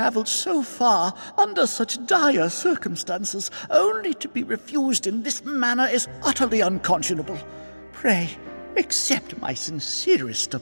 so far under such dire circumstances, only to be refused in this manner is utterly unconscionable. Pray, accept my sincerest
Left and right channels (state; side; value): inverted; both; correlation -1.00